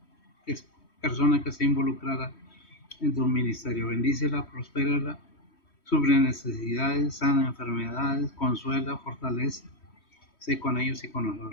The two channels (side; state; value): right; late; 3.1 ms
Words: persona que esté involucrada en tu ministerio. Bendícela, prospérala, suple necesidades, sana enfermedades, consuela, fortalece. sé con ellos y con